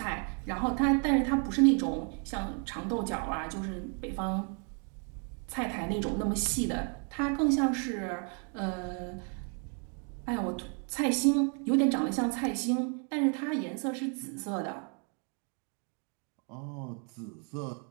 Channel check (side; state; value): left; quieter; 39.8 dB